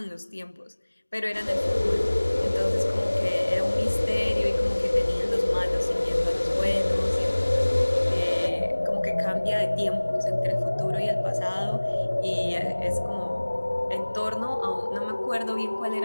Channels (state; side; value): inverted; both; correlation -1.00